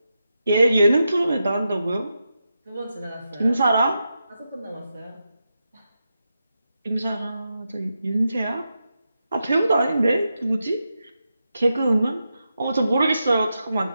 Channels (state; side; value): inverted; both; correlation -0.88